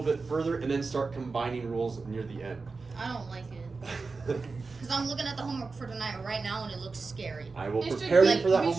bit further and then start combining rules near the end. I don't like it. Because I'm looking at the homework for tonight right now and it looks scary. I will It should prepare be- you for that we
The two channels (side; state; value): left; quieter; 4.2 dB